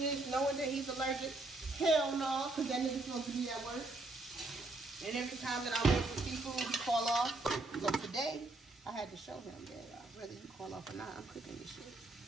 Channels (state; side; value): quieter; left; 3.0 dB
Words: this knowing that he's allergic? Hell no, because that nigga's supposed to be at work. And every time that I wait for seafood, he call off. So today, I had to show him that whether he call off or not, I'm cooking this shit.